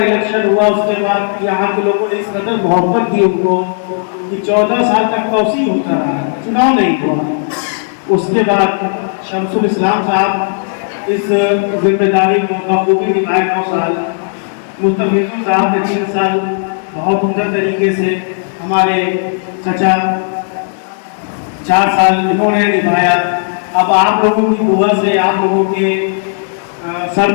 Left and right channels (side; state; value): right; silent; digital silence